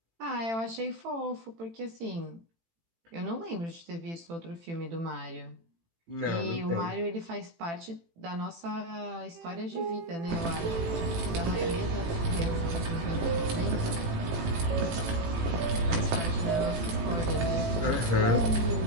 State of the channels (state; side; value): late; left; 18 ms